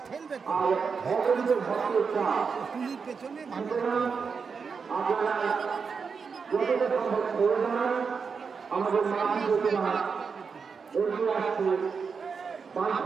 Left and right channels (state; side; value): quieter; left; 5.6 dB